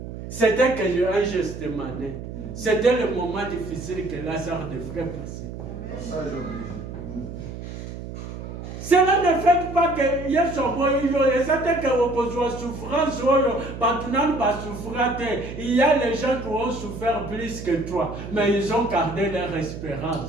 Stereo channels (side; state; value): right; noise; hum, 9 dB below the sound